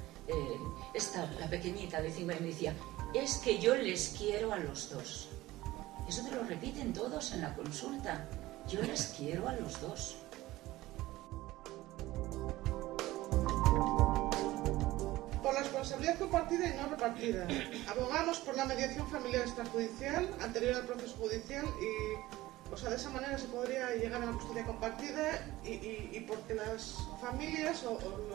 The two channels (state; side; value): quieter; left; 17.4 dB